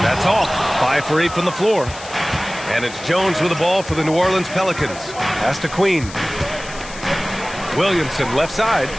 That's off. 5 for 8 from the floor. And it's Jones with the ball for the New Orleans Pelicans. Pass to Queen. Williamson left side.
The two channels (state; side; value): noise; left; hiss, 15 dB below the sound